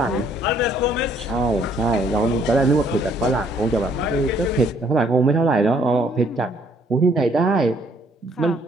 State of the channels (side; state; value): both; normal; correlation 0.65